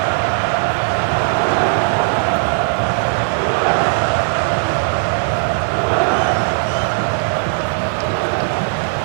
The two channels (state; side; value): silent; left; 56 dB below the other